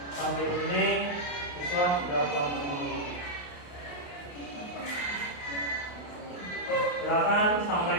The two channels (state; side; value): late; right; 28 ms